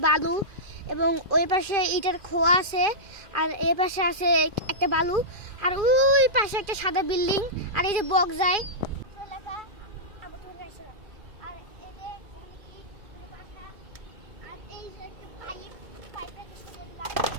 বালু। এবং ওই পাশে ইটের খোয়া আছে, আর এই পাশে আছে একটা বালু। আর ওই পাশে একটা সাদা বিল্ডিং। আর এই যে বক যায় এলাকা। আর এই যে আর এই যে একটা পাইপটাকে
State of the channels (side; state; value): left; late; 2.4 ms